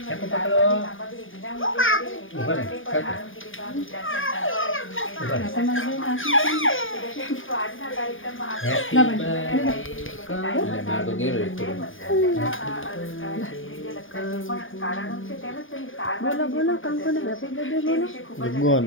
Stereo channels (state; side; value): late; right; 0.58 ms